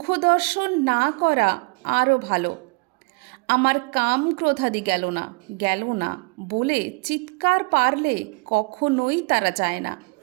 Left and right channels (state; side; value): quieter; left; 30.3 dB